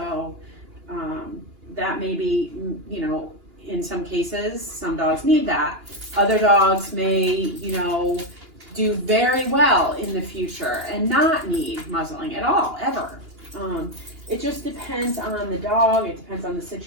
that may be, you know, in some cases, some dogs need that. Other dogs may, you know, do very well in the future and not need muzzling at all, ever. It just depends on the dog, it depends on the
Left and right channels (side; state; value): left; late; 2.9 ms